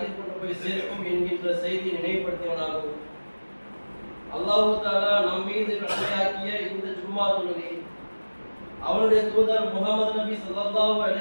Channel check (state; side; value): inverted; both; correlation -1.00